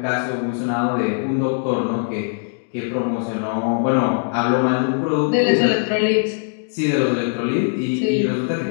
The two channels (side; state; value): right; silent; digital silence